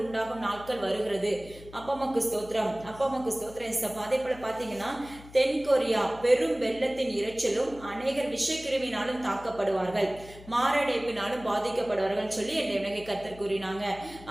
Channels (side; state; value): left; noise; hum, 19 dB below the sound